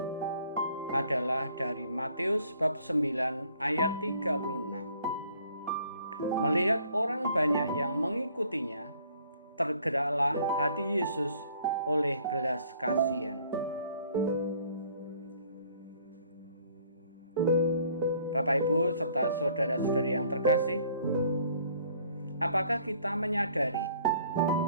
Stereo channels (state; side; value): inverted; both; correlation -0.59